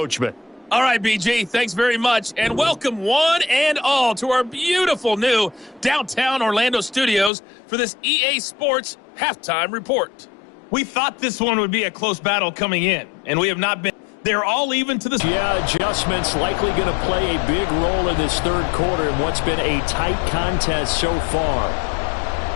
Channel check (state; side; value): drops out; right; at 7.3 s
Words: All right, BG, thanks very much, and welcome one and all to our beautiful new downtown Orlando studios for this EA Sports Halftime Report. We thought this one would be a close battle coming in, and we have not been. They're all even to this. Yeah, adjustments likely going to play a big role in this third quarter in what's been a tight contest so far.